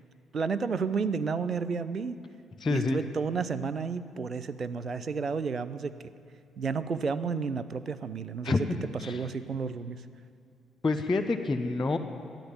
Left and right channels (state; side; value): normal; both; correlation 0.74